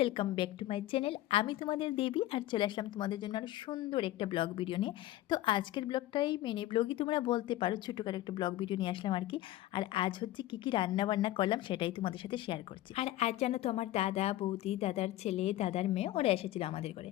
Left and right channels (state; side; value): quieter; right; 15.2 dB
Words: back to my channel. আমি তোমাদের দেবী আর চলে আসলাম তোমাদের জন্য আরও সুন্দর একটা ব্লগ ভিডিও নিয়ে। তো আজকের ব্লগটাই মিনি ব্লগই তোমরা বলতে পারো, ছোটোখাটো একটা ব্লগ ভিডিও নিয়ে আসলাম আর কি। আর আজ হচ্ছে কী কী রান্নাবান্না করলাম সেটাই তোমাদের সাথে শেয়ার করছি। আর আজ জানো তো আমার দাদা বৌদি, দাদার ছেলে, দাদার মেয়ে ওরা এসেছিলো আমাদের ঘরে।